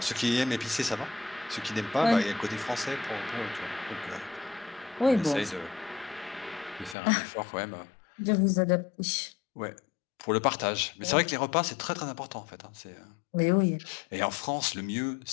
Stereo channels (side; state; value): right; drops out; at 7.0 s